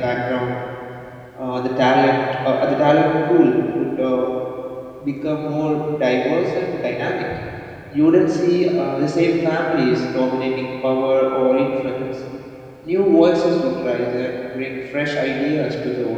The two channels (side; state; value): both; identical; correlation 1.00